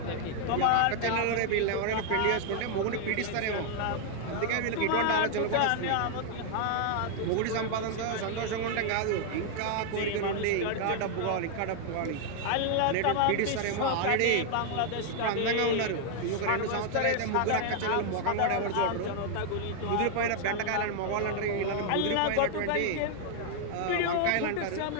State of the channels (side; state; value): both; different; correlation 0.00